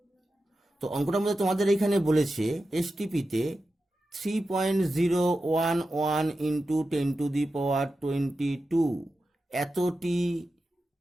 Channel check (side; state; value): both; normal; correlation 0.91